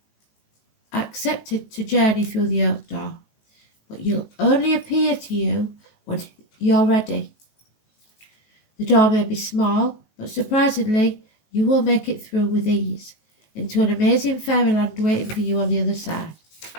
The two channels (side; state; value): right; late; 19 ms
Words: accepted to journey through the oak door. But you'll only appear to you when you're ready. The door may be small, but surprisingly, you will make it through with ease into an amazing fairyland waiting for you on the other side,